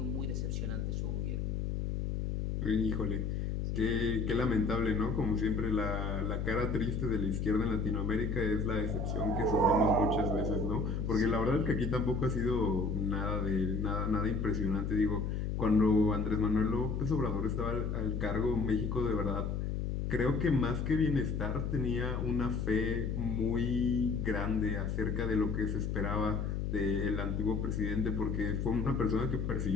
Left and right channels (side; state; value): left; noise; hum, 1 dB below the sound